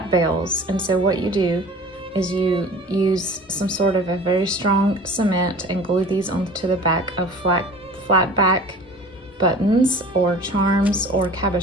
bales. And so what you do is you use some sort of a very strong cement and glue these onto the back of flat back buttons or charms or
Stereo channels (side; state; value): both; normal; correlation 0.43